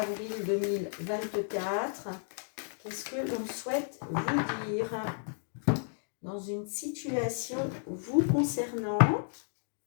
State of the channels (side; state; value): right; silent; digital silence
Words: 2024? Qu'est-ce que l'on souhaite vous dire dans une situation vous concernant?